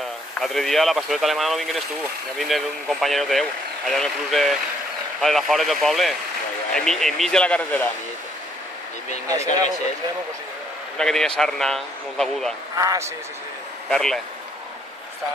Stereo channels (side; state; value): both; normal; correlation 0.68